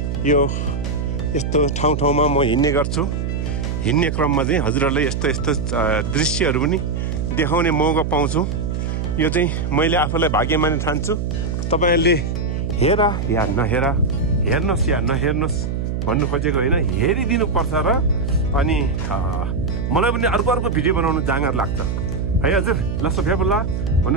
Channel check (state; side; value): noise; right; hum, 2 dB below the sound